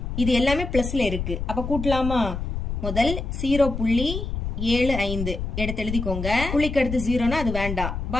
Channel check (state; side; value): noise; left; rumble, 4 dB below the sound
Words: இது எல்லாமே பிளஸ்ல இருக்கு, அப்ப கூட்டலாமா? முதல் 0.75 எடுத்து எழுதிக்கோங்க. புள்ளிக்கு அடுத்து 0னா அது வேண்டாம்.